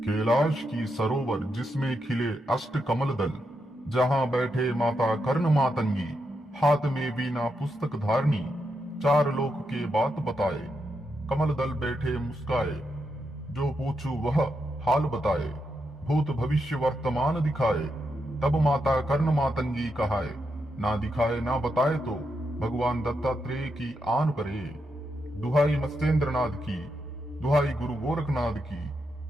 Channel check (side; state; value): both; normal; correlation 0.83